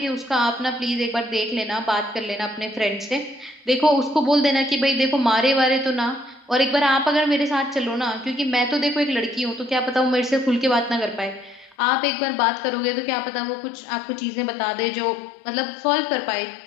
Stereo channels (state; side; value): drops out; right; at 11.8 s